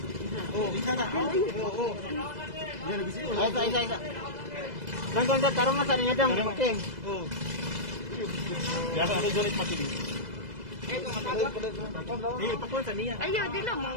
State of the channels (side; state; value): left; late; 2.0 ms